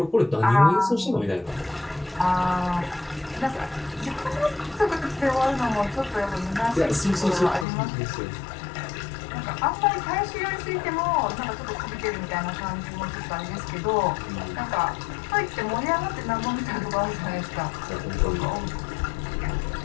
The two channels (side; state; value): right; drops out; at 7.7 s